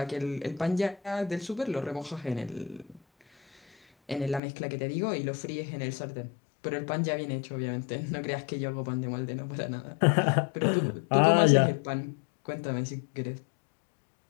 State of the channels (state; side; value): drops out; right; at 4.4 s